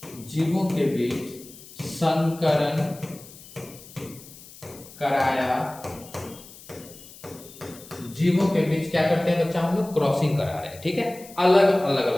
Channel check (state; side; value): noise; left; hiss, 19 dB below the sound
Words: जीवों के बीच संकरण कराया, जीवों के बीच क्या करते हैं बच्चा, हम लोग क्रॉसिंग करा रहे हैं। ठीक है, अलग अलग